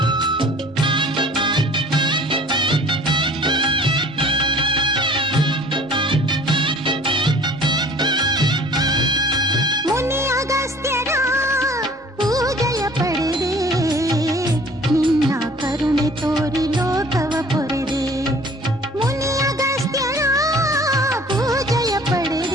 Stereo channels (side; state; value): both; normal; correlation 0.49